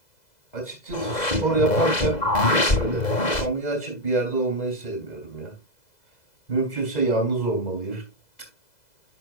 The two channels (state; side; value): late; right; 2.0 ms